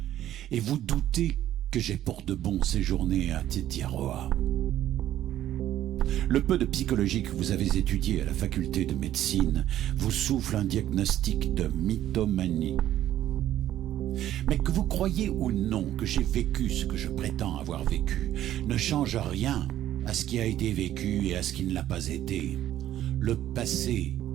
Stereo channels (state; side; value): quieter; left; 12.4 dB